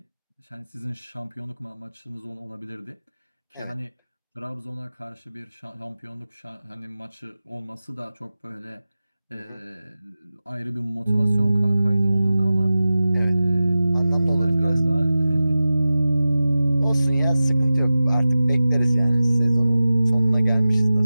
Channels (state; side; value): inverted; both; correlation -0.95